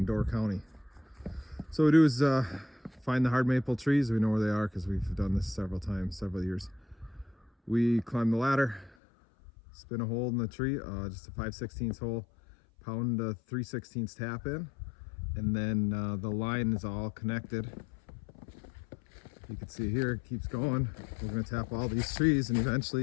Door County. So what we do is find the hard maple trees. We know where they are because we've done this several times, several years. We climb the ladder, spin a hole in the tree, just a 5/16 hole, pound a 3/16 tap in, and then the line is all connected. You can see here, it keeps going. We're going to tap all these trees, and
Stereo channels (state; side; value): drops out; right; at 9.0 s